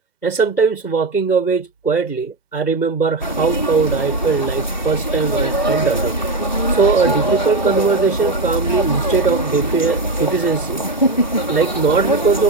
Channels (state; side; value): quieter; left; 3.3 dB